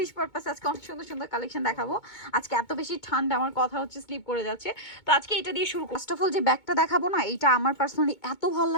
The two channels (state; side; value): late; right; 2.2 ms